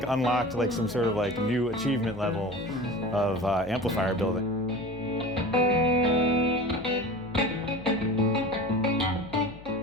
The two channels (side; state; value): left; noise; hum, 19 dB below the sound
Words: unlocked like some sort of like new achievement level of amplifier building.